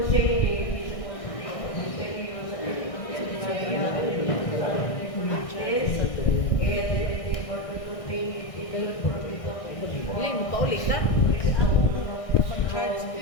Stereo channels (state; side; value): late; right; 1.6 ms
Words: Ministerio sa Pilipinas, and for the contained legal provision. Hindi mo paulit na. Mag-charge.